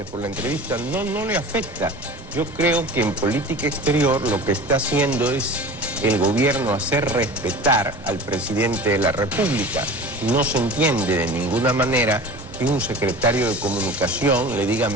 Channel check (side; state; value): both; normal; correlation 0.38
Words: por la entrevista. No le afecta. Yo creo que en política exterior lo que está haciendo es el gobierno hacer respetar al presidente de la República. No se entiende de ninguna manera que un secretario de Comunicación le diga